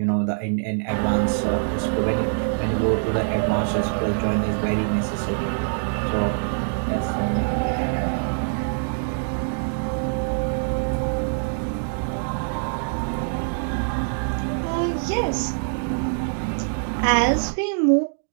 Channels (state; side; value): silent; left; digital silence